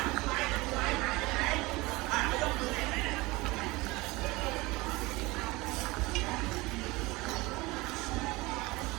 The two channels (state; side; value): quieter; left; 22.2 dB